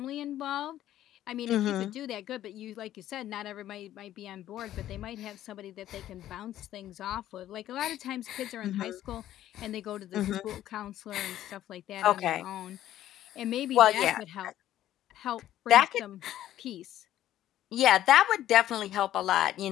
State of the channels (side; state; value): right; quieter; 12.7 dB